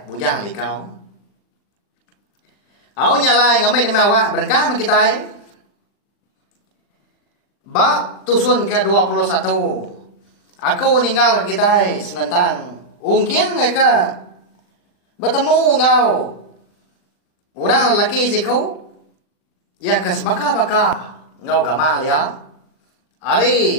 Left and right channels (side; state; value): right; late; 39 ms